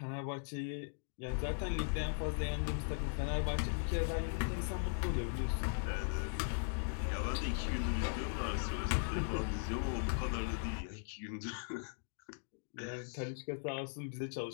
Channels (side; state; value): right; silent; digital silence